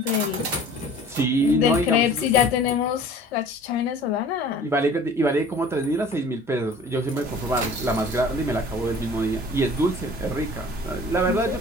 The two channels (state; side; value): normal; both; correlation 0.46